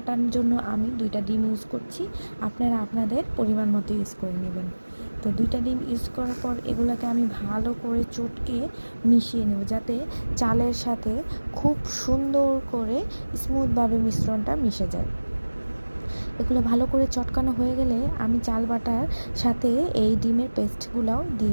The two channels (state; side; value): inverted; both; correlation -1.00